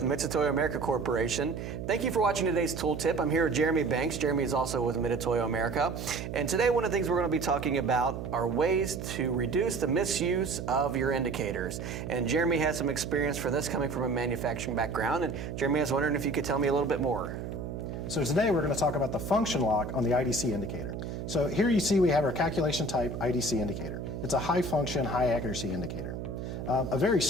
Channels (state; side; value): noise; right; hum, 7 dB below the sound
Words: Mitutoyo America Corporation. Thank you for watching today's tooltip. I'm here with Jeremy Banks. Jeremy is also with Mitutoyo America. And today one of the things we're going to be talking about are ways to reduce the misuse of your indicators. And Jeremy has some experience for this coming from a manufacturing background. And Jeremy, I was wondering if you could tell me a little bit more. So today we're going to talk about the function lock on the ID-C indicator. So here you see we have our calculation type ID-C indicator. It's a high function, high accuracy indicator. A very